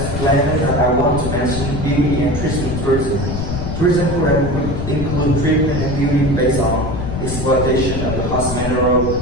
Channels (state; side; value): noise; left; rumble, 4 dB below the sound